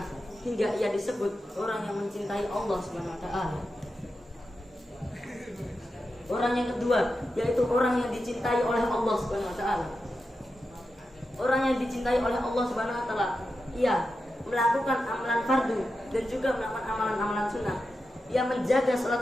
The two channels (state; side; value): normal; both; correlation 0.90